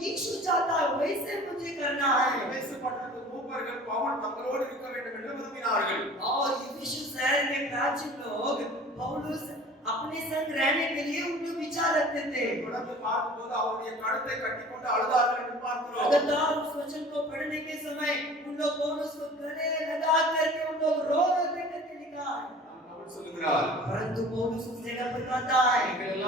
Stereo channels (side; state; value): both; normal; correlation 0.44